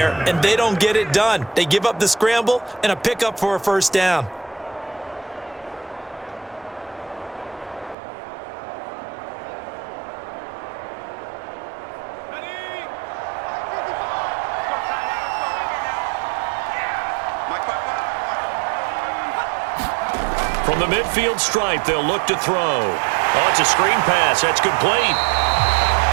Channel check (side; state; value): left; drops out; at 8.0 s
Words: and they don't get it done. They give up the scramble and a pickup for a 1st down. From the midfield stripe, they'll look to throw. Oh, it's a screen pass. That's complete.